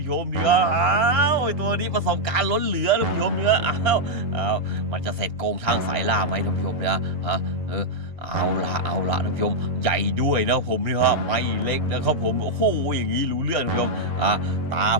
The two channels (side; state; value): left; late; 2.8 ms